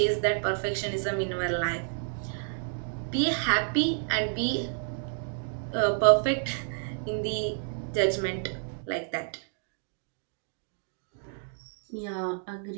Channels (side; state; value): left; silent; 58 dB below the other